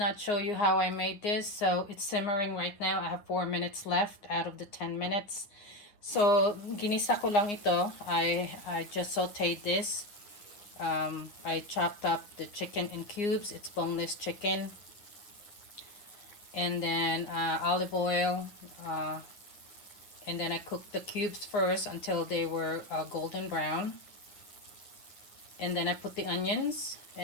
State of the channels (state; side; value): late; right; 9.7 ms